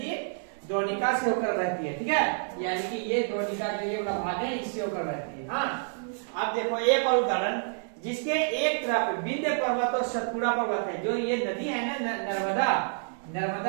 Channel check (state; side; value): silent; left; 59 dB below the other